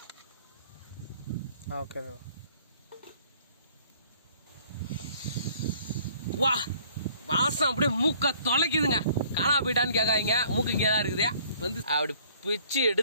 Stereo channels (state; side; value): inverted; both; correlation -0.57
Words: வா வாசம் அப்படியே மூக்க தொலைக்குதுங்க. காணா போயிட்டான்னு கேட்காதீங்க. மூக்கு இங்கே தான் இருக்குது. வந்து அப்படி பிச்சு